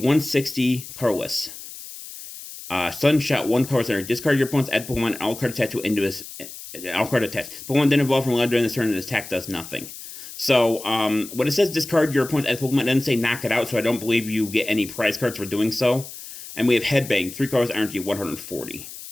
Carless. Sunshot, 1 card center. Discard your opponent's add Pokemon and all card attached to into his. All card attached. Pokemon then evolve from Loud during this turn and this attack does nothing. So, when it says discard your opponent's add Pokemon, it doesn't say knock it out, so I don't believe you get any prize cards for doing so. And we have Headbang, 3 cards, energy 140.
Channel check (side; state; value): left; noise; hiss, 13 dB below the sound